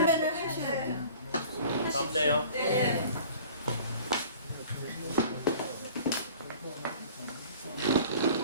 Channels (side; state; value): both; inverted; correlation -0.46